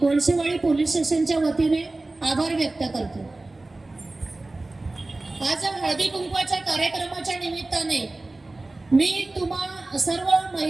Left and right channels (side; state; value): left; quieter; 3.0 dB